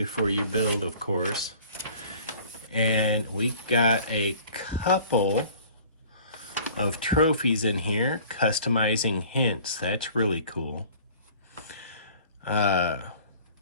you build, of course. And we got a couple of trophies in here, customizing hints. That's really cool.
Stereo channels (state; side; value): inverted; both; correlation -0.49